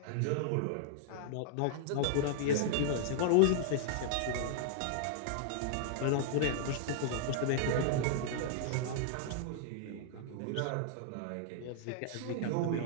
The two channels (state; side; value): different; both; correlation -0.01